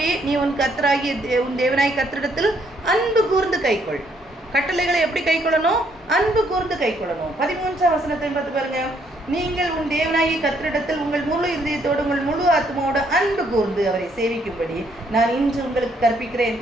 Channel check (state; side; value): normal; both; correlation 0.70